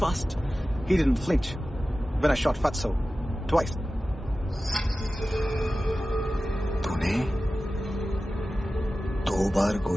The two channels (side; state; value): both; normal; correlation 0.95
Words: He didn't flinch when I shot Fatso twice. तूने 2 बार